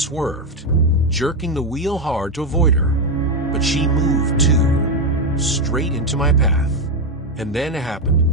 jerking the wheel hard to avoid her, but she moved too, straight into my path. And then it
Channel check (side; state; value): both; normal; correlation 0.08